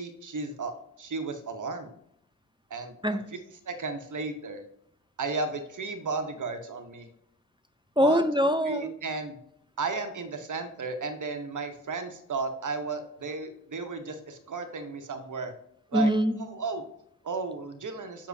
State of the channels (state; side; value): normal; both; correlation 0.35